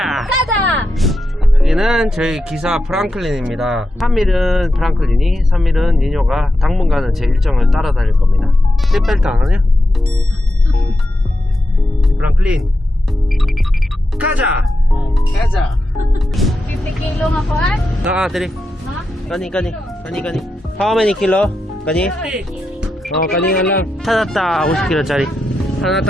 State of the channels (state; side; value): normal; both; correlation 0.87